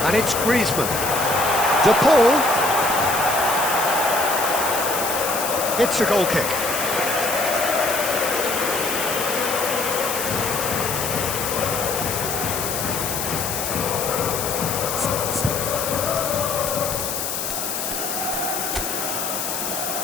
And it's Griezmann. De Paul. It's a goal kick.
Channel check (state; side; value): noise; left; hiss, 3 dB below the sound